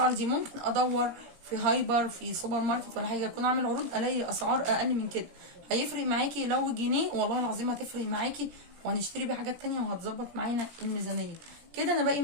دي ممكن ادور في هايبر في سوبر ماركت ولا حاجه اكون عامل عروض الاقي اسعار اقل من كده. هيفرق معاكي لو جنيه والله العظيم هتفرق معاكي، وهنشتري بيه حاجات تانية وهتظبط معانا الميزانيه. كده انا باقي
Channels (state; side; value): late; left; 17 ms